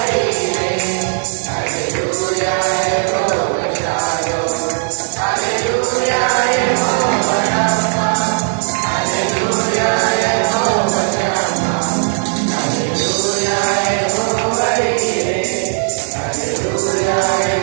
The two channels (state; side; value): silent; left; 65 dB below the other